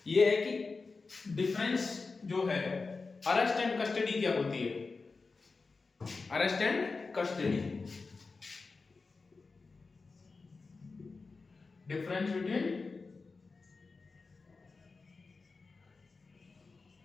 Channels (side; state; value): right; quieter; 4.2 dB